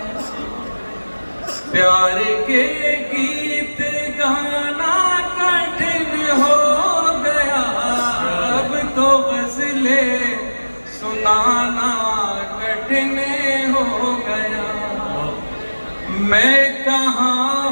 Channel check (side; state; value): both; inverted; correlation -1.00